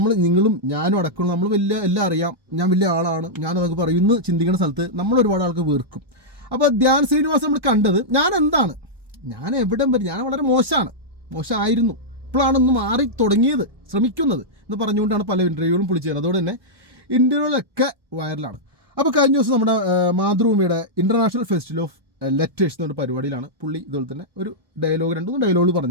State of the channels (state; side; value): late; left; 1.2 ms